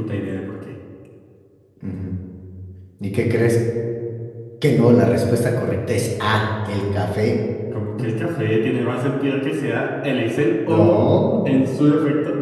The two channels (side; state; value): both; identical; correlation 1.00